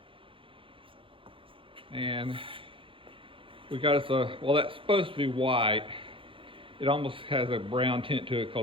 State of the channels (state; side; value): late; left; 0.25 ms